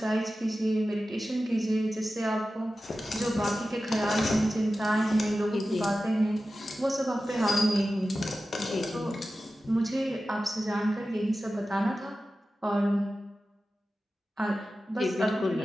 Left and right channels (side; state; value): both; normal; correlation 0.94